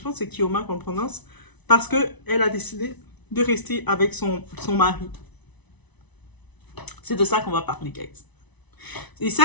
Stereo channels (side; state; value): right; late; 1.0 ms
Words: pense que c'est Kioma qu'on prononce. Parce qu'elle a décidé de rester avec son mari. C'est de ça qu'on va parler, guys. Et